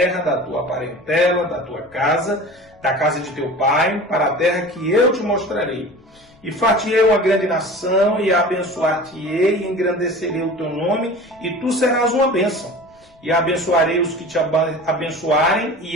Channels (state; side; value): noise; left; rumble, 30 dB below the sound